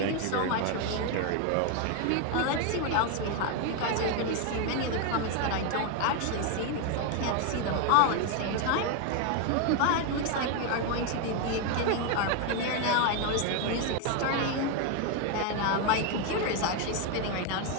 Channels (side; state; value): both; different; correlation 0.01